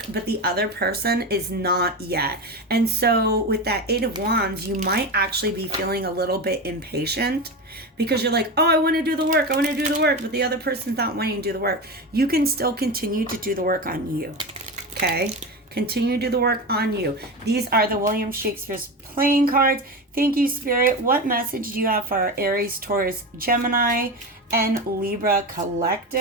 but the other person is not yet. And so with that Eight of Wands, you might actually be feeling a little bit impatient because you're like, oh, I want to do the work, but the other person's not wanting to do the work. You can still continue to do the work on you, okay? Continue to do the work on you. These are the William Shakespeare's playing cards. Thank you, Spirit. What message do you have for our Aries, Taurus, Gemini, and Libra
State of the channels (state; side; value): normal; both; correlation 0.21